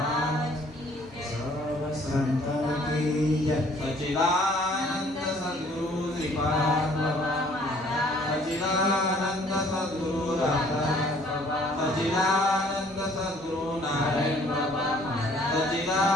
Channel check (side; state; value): both; normal; correlation 0.58